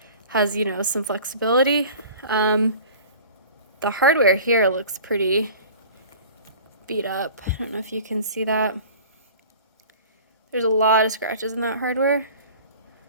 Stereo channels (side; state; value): both; inverted; correlation -0.43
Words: has, some flexibility. The hardware here looks pretty beat up. I don't know if you can see that. There's a lot of scratches in that hardware.